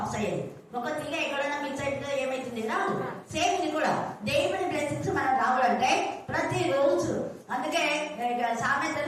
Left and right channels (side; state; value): both; identical; correlation 1.00